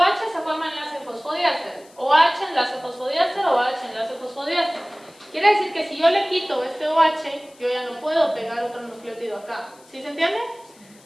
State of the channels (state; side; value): noise; left; hiss, 27 dB below the sound